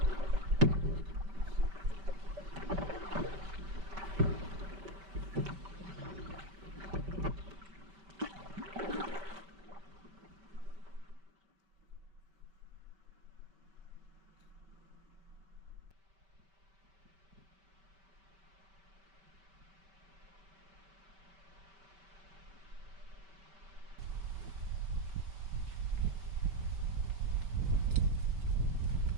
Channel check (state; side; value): late; left; 5.2 ms